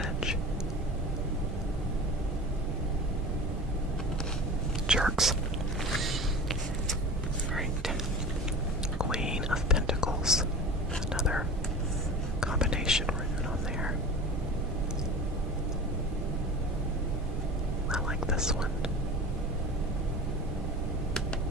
Jerks. Alright. Queen of Pentacles. Another combination rune on there. I like this one.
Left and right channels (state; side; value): normal; both; correlation 0.34